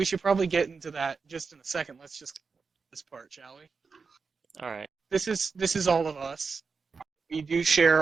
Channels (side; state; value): left; quieter; 5.0 dB